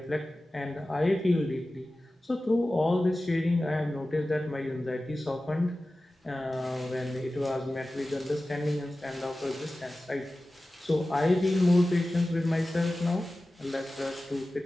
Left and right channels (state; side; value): normal; both; correlation 0.96